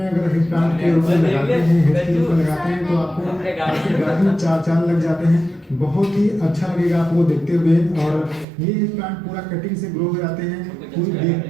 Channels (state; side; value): drops out; left; at 8.5 s